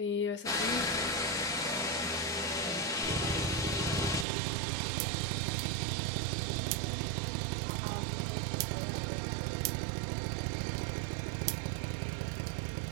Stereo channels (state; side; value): drops out; left; at 4.2 s